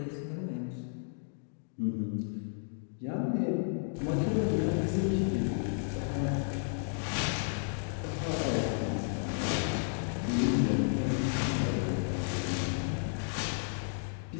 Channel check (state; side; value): silent; right; digital silence